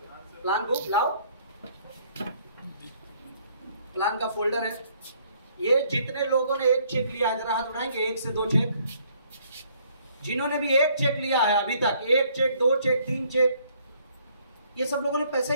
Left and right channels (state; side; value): inverted; both; correlation -0.64